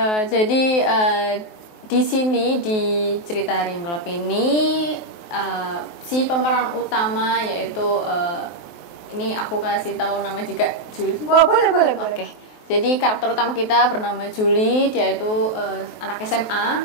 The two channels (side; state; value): right; late; 23 ms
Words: Jadi di sini di cerita Hari yang Gelap ini si pemeran utama yaitu ini aku kasih tahu nama juga Julie. Boleh. Oke. Jadi karakter utama kita bernama Julie, dia itu anak SMA